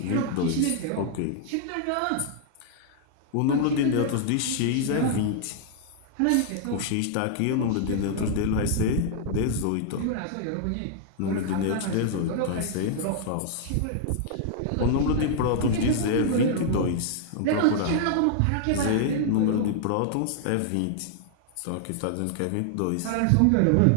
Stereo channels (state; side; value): different; both; correlation -0.01